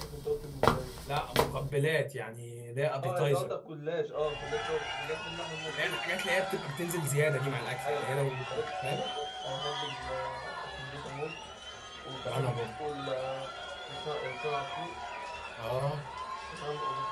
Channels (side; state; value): both; identical; correlation 1.00